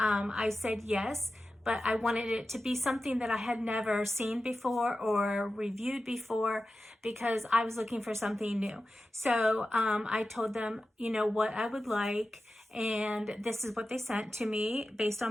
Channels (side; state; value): both; normal; correlation 0.93